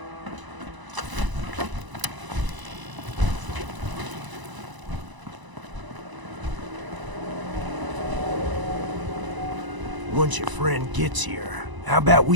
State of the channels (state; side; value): late; left; 1.0 ms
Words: Once your friend gets here, how about